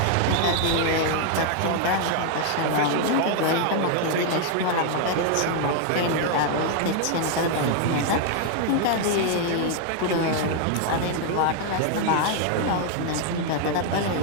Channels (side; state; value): both; different; correlation 0.00